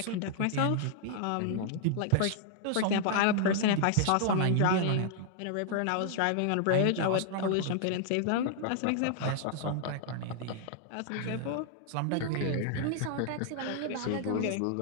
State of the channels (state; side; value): different; both; correlation 0.00